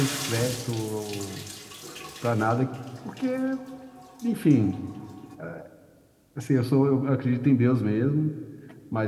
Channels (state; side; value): identical; both; correlation 1.00